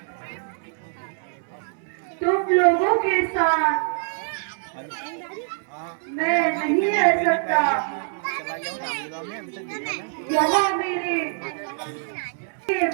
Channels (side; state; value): left; silent; digital silence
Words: तुम लोगों के साथ मैं नहीं रह सकता यहाँ मेरे